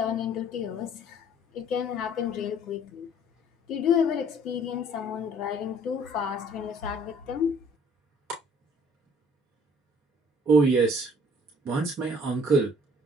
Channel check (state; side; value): normal; both; correlation 0.55